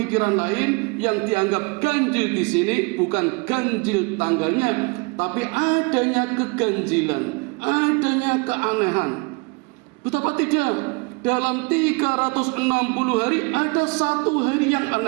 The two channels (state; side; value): quieter; left; 30.3 dB